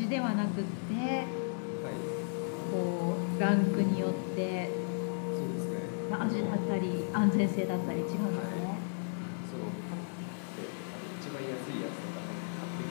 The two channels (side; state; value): right; silent; digital silence